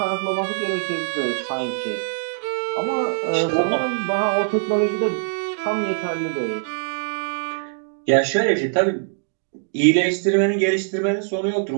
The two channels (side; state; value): left; silent; digital silence